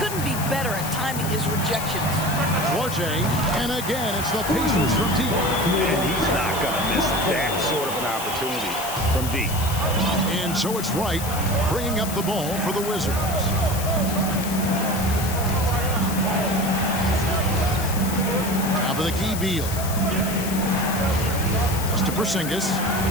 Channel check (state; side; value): noise; left; hiss, 8 dB below the sound